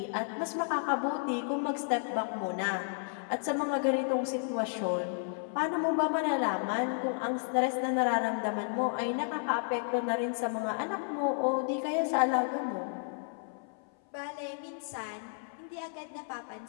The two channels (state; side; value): silent; right; 56 dB below the other